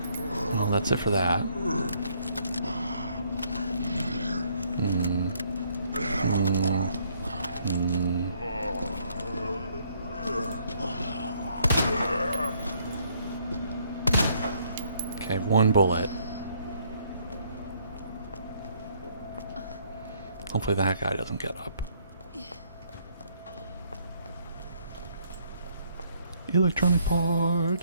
Well, that's it for that. Okay, one bullet. Hopefully that guy doesn't get up. Electronic part.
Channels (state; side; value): inverted; both; correlation -0.67